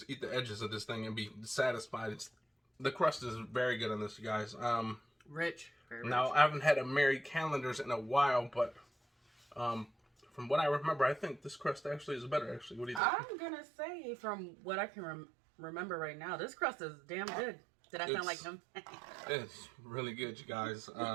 eat the edges of this thing and be satisfied. The crust is very good on this, you guys. Rich. Very now, rich. I haven't had a Mary Callender's in a while, but from what I remember, I think this crust actually is better, actually. What do you think? I'm going to say, from what I can remember right now, this crust is damn good. Did I sound like him? It's really good, you guys.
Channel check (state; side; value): drops out; left; at 13.0 s